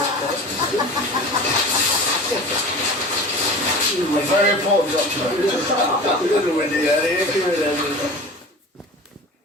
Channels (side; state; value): both; normal; correlation 0.36